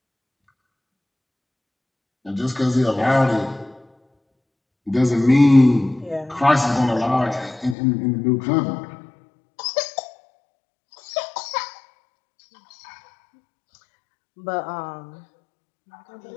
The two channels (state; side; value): drops out; right; at 7.8 s